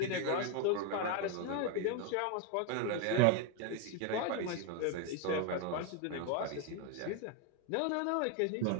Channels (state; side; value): different; both; correlation 0.01